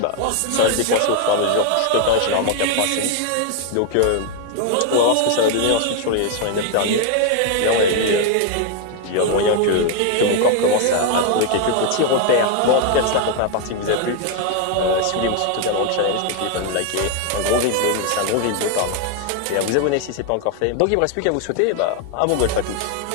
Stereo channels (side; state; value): both; different; correlation 0.01